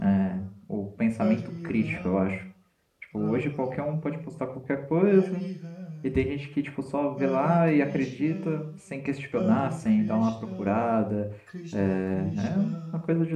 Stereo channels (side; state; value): both; identical; correlation 1.00